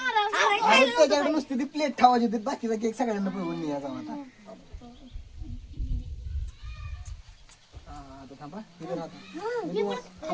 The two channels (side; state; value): both; identical; correlation 1.00